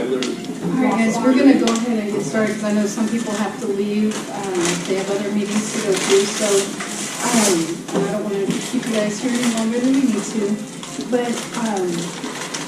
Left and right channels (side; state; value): both; identical; correlation 1.00